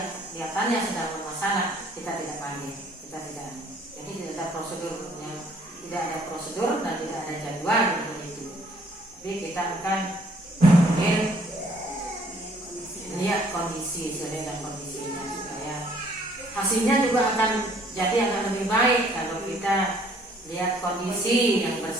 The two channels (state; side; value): normal; both; correlation 0.61